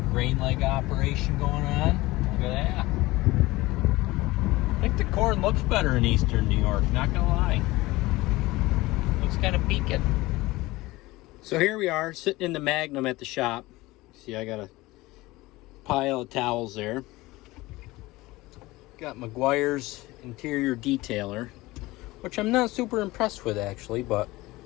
grain leg operation going on. Look at that. I think the corn looks better in eastern New York, not gonna lie. Looks kind of peaked. So here we are, sitting in the Magnum at the shop. See, I got a pile of towels there. Got McGuire's interior detailer, which I'm not super impressed with actually, but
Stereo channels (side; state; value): right; quieter; 19.8 dB